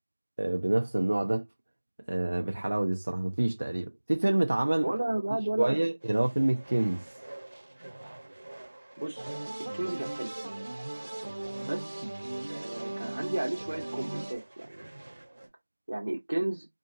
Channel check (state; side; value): inverted; both; correlation -1.00